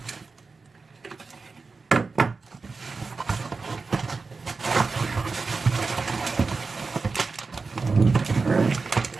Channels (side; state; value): left; quieter; 4.3 dB